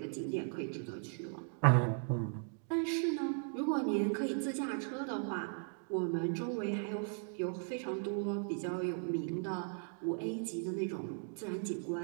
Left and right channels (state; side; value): silent; left; 53 dB below the other